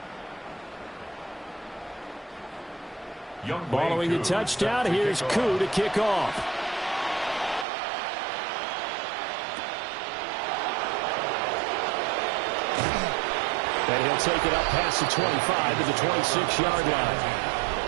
Following the touchdown, here's Koo to kick off. And he'll take it up past the 25 to the 26-yard line.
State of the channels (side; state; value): left; drops out; at 7.7 s